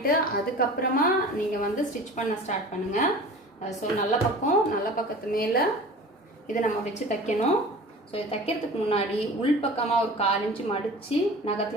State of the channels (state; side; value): normal; both; correlation 0.39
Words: அதுக்கப்புறமா நீங்கள் வந்து ஸ்டிச் பண்ண ஸ்டார்ட் பண்ணுங்கள். ஸோ நல்ல பக்கத்து மேலே இதை நம்ம வச்சு தைக்கணும். ஸோ இது தைக்கிறதுக்கு முன்னாடி உள்பக்கமாக ஒரு 1/4 இன்ச்சு மடித்து